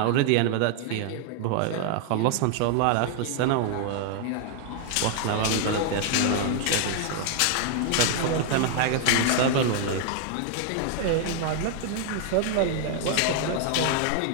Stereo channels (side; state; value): both; different; correlation 0.00